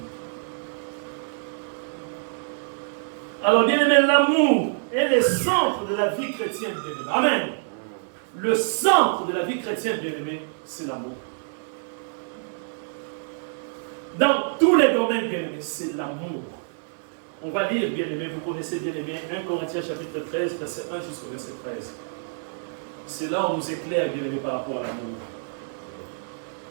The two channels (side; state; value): left; silent; digital silence